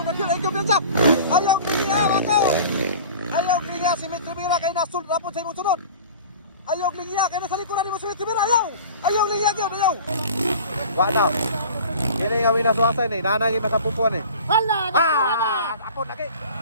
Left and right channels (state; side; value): inverted; both; correlation -0.41